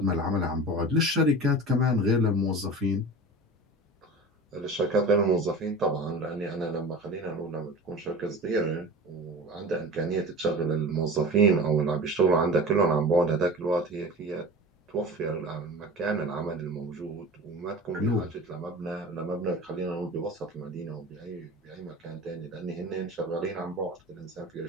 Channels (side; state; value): both; normal; correlation 0.35